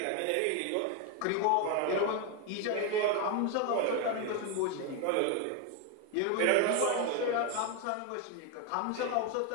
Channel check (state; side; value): different; both; correlation 0.01